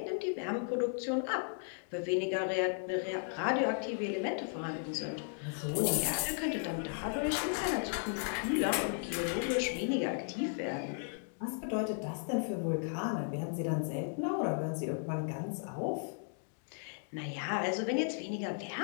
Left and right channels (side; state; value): right; silent; 54 dB below the other